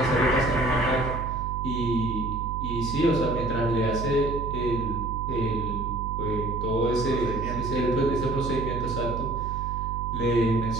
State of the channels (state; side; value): noise; right; hum, 5 dB below the sound